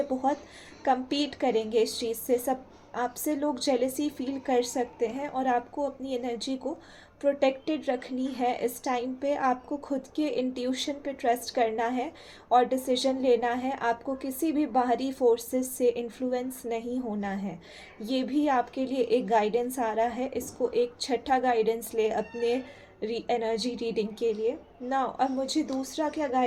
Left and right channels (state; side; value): identical; both; correlation 1.00